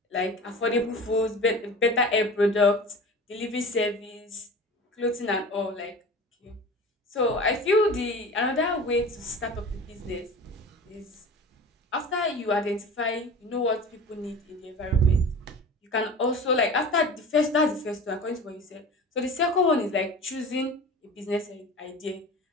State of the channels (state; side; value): normal; both; correlation 0.36